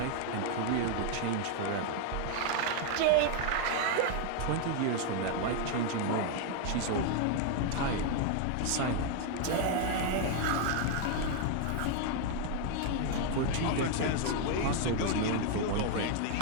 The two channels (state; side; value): different; both; correlation 0.00